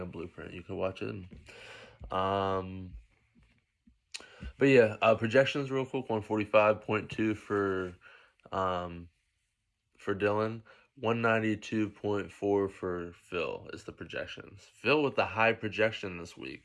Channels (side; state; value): both; identical; correlation 1.00